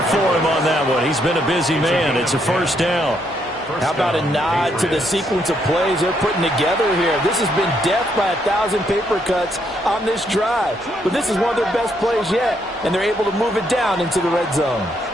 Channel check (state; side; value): normal; both; correlation 0.74